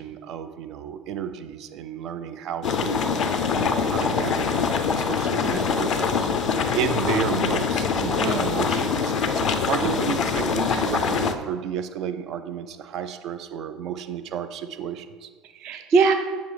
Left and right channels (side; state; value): both; normal; correlation 0.37